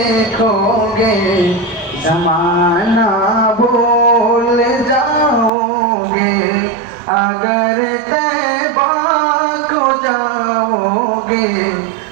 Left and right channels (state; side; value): drops out; left; at 5.5 s